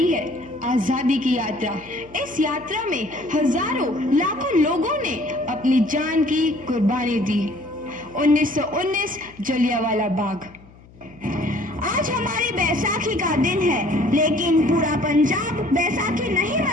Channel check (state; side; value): noise; left; hum, 24 dB below the sound